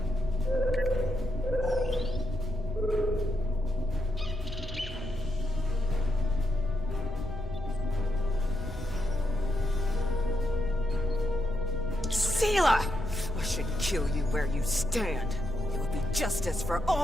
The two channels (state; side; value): normal; both; correlation 0.82